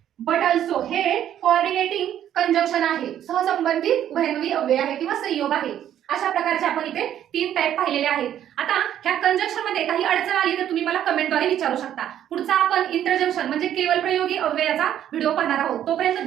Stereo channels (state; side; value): quieter; left; 10.8 dB